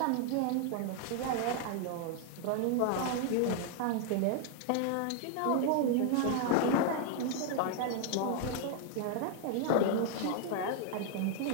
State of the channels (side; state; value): both; different; correlation 0.00